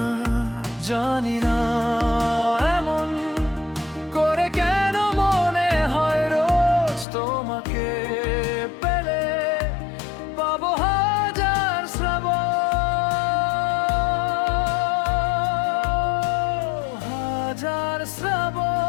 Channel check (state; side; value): drops out; right; at 7.1 s